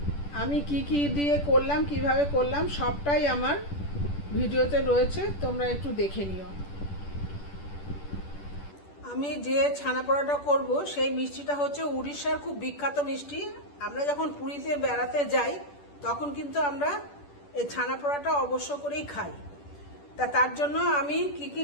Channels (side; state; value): right; late; 10 ms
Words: আমি কি কি দিয়ে করলাম, কিভাবে করলাম, সবটাই আমার ভিডিওতে রয়েছে, তোমরা একটু দেখে নিও। আমি যে ছানাপোড়াটা করব সেই মিষ্টিটা হচ্ছে উড়িষ্যার খুব বিখ্যাত মিষ্টি। আমরা যখন পুরীতে বেড়াতে যাই তখন কিন্তু আমরা এই ছানাপোড়াটা অবশ্য করেই খাই। তার জন্য আমি কি কি